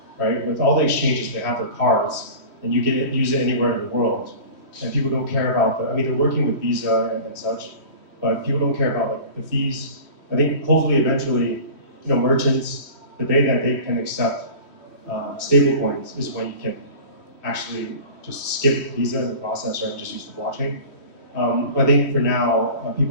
right? With all the exchanges, they have their cards, and you can use it anywhere in the world, and people don't care about I mean, they're working with Visa and such, but people don't care about like the fees. I think hopefully eventually, merchants, the day that they can accept stable coins is when you can actually just skip Visa in the process, right? Just use the blockchain. I think for now,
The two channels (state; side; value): late; right; 3.1 ms